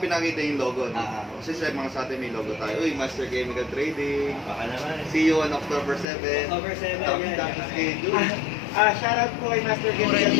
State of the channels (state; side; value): drops out; right; at 6.1 s